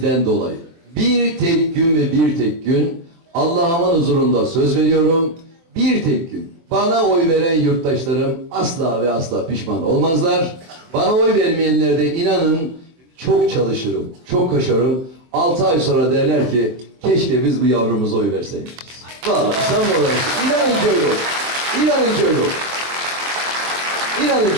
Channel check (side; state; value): left; late; 24 ms